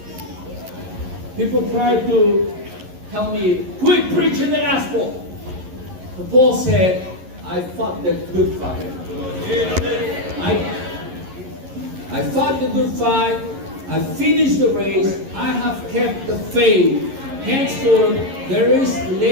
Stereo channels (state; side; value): late; left; 11 ms